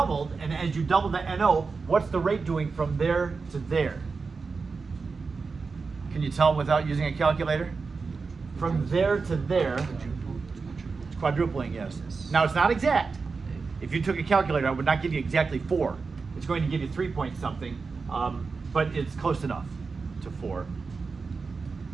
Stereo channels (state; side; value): quieter; left; 4.6 dB